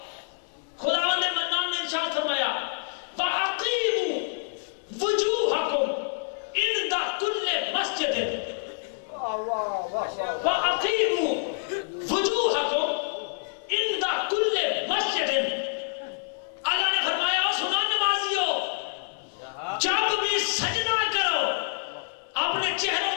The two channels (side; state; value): right; silent; 60 dB below the other